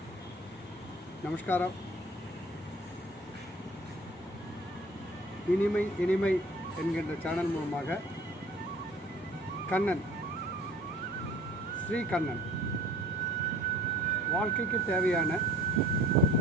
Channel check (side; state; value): both; normal; correlation 0.50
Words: நமஸ்காரம். இனிமை இனிமை என்கின்ற சேனல் மூலமாக கண்ணன், ஸ்ரீ கண்ணன் வாழ்க்கைக்கு தேவையான